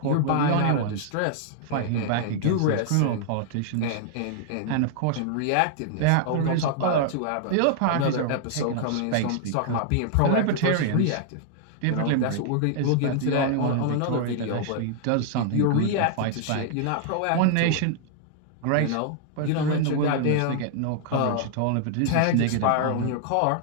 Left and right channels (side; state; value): both; different; correlation -0.01